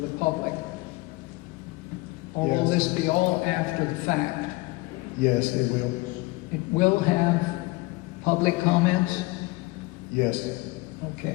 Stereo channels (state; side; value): quieter; right; 22.5 dB